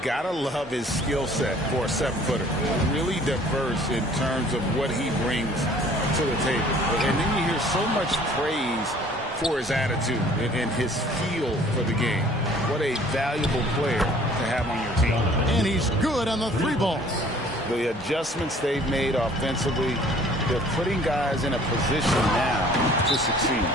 love his skill set for a 7-footer. Really diverse in terms of what he brings to the table. And then you hear so much praise for his attitude and his feel for the game. What a valuable player to have on your team. And he's good on the 3-ball. The adjustments they've made offensively, they're putting guys in a position now to succeed.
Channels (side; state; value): both; normal; correlation 0.54